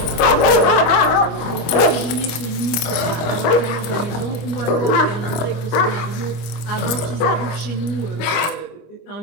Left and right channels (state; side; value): late; right; 25 ms